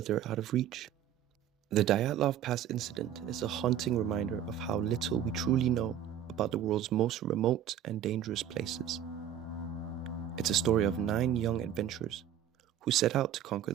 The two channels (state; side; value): quieter; left; 10.0 dB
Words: out of reach. The Dyatlov Pass incident is a haunting reminder of how little we truly know about the world's most remote and dangerous places. It's a story of 9 young adventurers who set out to conquer